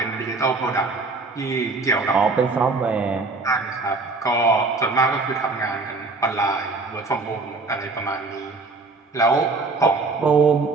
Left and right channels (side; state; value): left; quieter; 3.7 dB